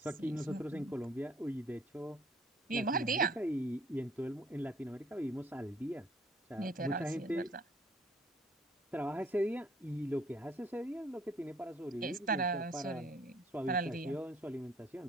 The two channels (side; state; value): both; normal; correlation 0.59